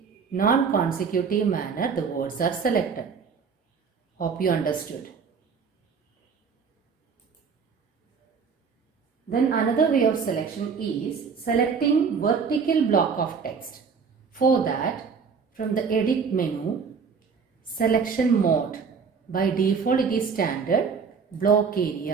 non-consecutive manner the words are selected. Hope you understood. Then another way of selection is selecting vertical block of text. For that, from the edit menu, selection mode. By default it is standard block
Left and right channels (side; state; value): left; quieter; 5.8 dB